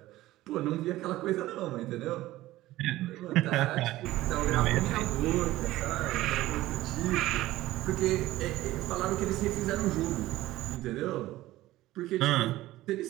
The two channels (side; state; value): left; quieter; 16.4 dB